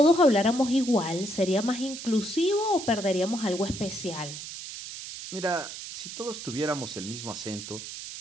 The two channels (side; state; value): right; noise; hiss, 10 dB below the sound